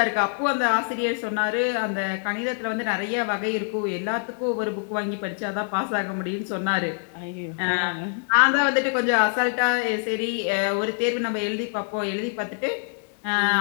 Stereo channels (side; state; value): right; silent; digital silence